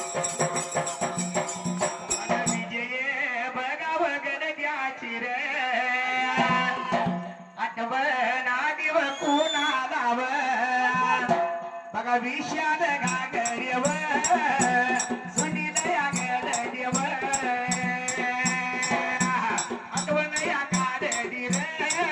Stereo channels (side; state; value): both; identical; correlation 1.00